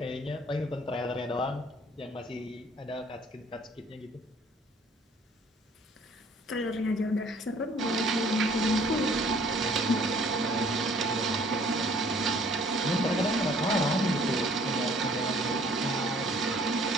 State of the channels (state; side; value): normal; both; correlation 0.56